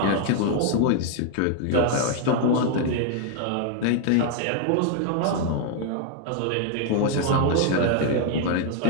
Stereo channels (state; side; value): different; both; correlation 0.00